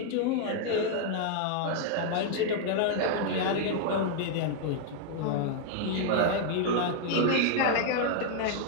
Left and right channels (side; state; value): both; different; correlation 0.00